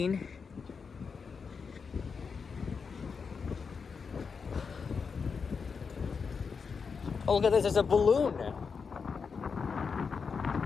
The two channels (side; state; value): right; quieter; 5.5 dB